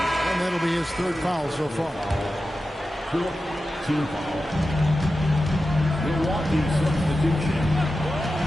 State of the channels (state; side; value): normal; both; correlation 0.92